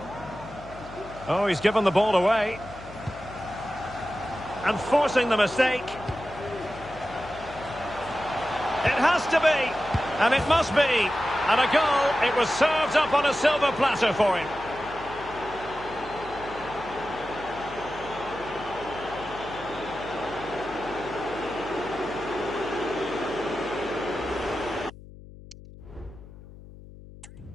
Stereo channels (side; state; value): left; noise; hum, 18 dB below the sound